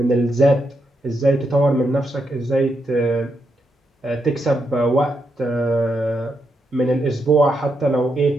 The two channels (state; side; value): normal; both; correlation 0.82